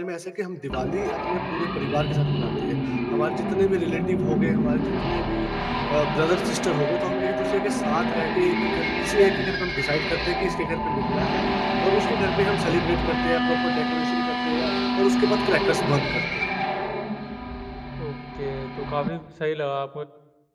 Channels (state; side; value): identical; both; correlation 1.00